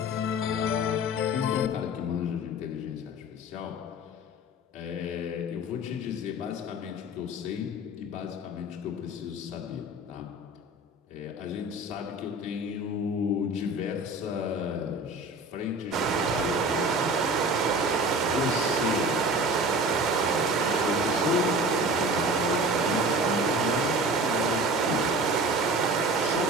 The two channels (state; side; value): normal; both; correlation 0.39